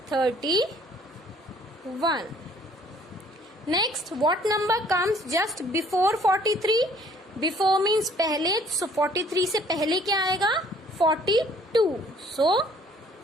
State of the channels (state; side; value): normal; both; correlation 0.58